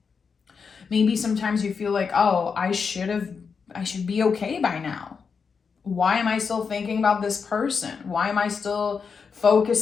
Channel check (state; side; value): quieter; right; 5.7 dB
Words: Maybe sometimes you feel like, oh, I should be okay by now. Why am I still thinking about this person? Why am I still